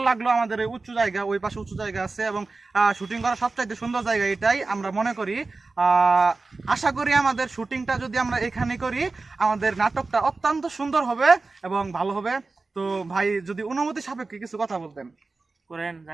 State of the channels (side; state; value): left; quieter; 3.7 dB